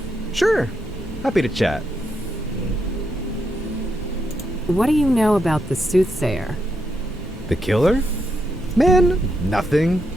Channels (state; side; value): normal; both; correlation 0.81